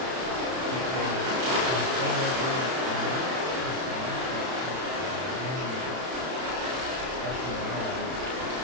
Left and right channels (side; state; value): left; late; 31 ms